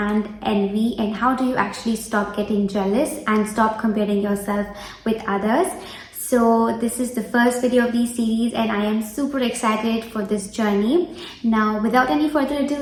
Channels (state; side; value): identical; both; correlation 1.00